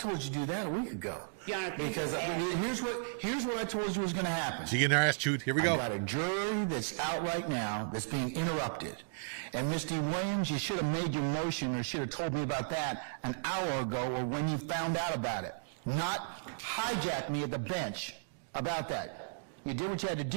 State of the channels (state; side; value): silent; left; digital silence